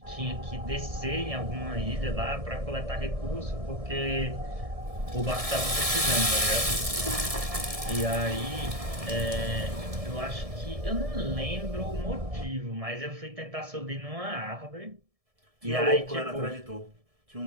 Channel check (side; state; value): left; late; 1.7 ms